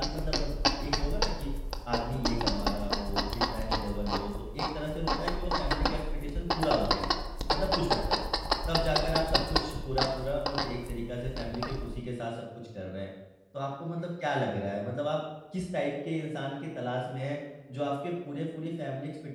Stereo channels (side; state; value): both; identical; correlation 1.00